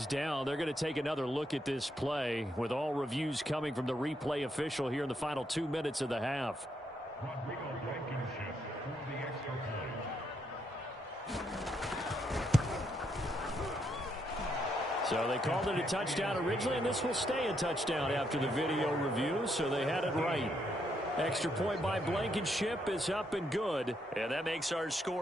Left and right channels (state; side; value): normal; both; correlation 0.77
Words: down. They're going to take another look at this play with all reviews coming from the replay official here in the final 2 minutes of the half. So they called it a touchdown originally, and this will stay a touchdown after the video review, so they had it right. Extra point by Blankenship is up and good, and that makes our